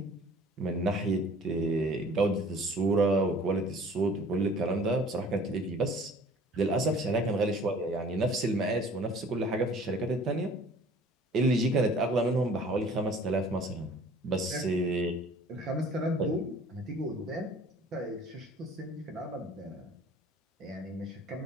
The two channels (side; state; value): both; normal; correlation 0.50